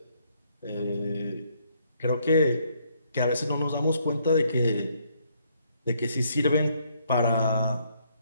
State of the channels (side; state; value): both; inverted; correlation -0.69